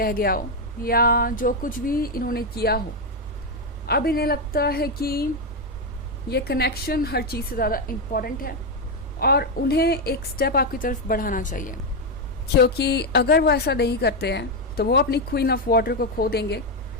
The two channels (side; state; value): both; normal; correlation 0.05